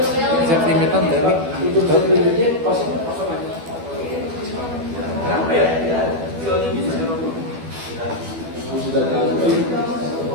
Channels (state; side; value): late; left; 12 ms